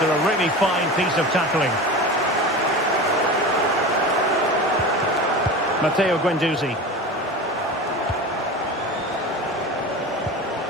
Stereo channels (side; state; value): both; normal; correlation 0.30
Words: a really fine piece of tackling. Matteo Guendouzi.